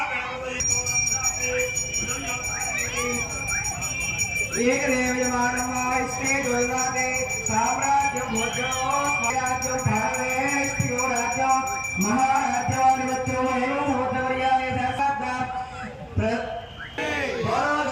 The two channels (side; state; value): both; identical; correlation 1.00